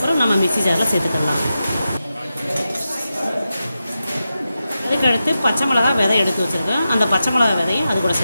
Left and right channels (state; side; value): inverted; both; correlation -0.91